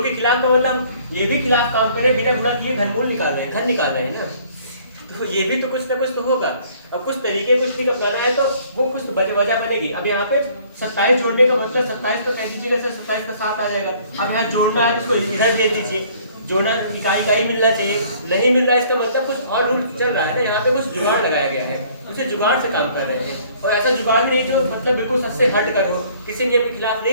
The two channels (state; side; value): inverted; both; correlation -0.58